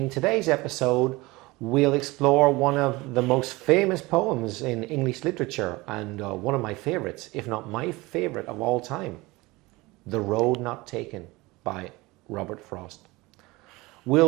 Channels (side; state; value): left; quieter; 21.9 dB